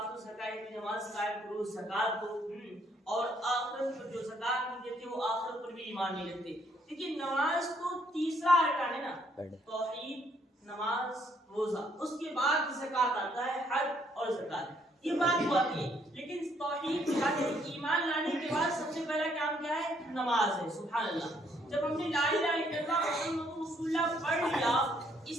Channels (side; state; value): both; normal; correlation 0.69